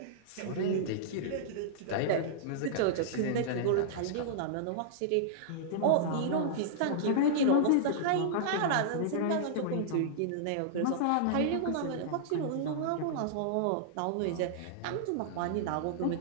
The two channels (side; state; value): both; different; correlation -0.02